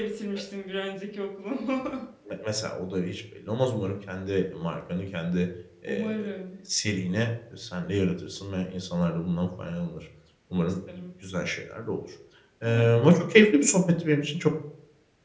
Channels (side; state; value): both; identical; correlation 1.00